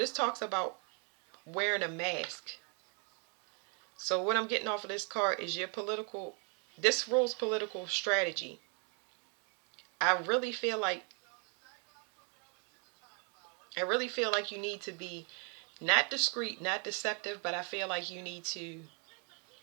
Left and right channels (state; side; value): quieter; left; 38.1 dB